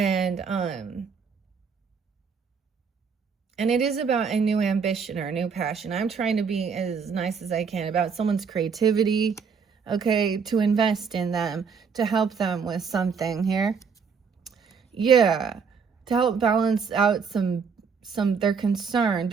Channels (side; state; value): left; quieter; 5.9 dB